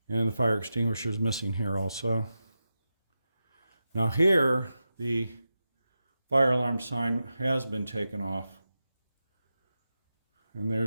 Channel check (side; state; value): both; inverted; correlation -0.90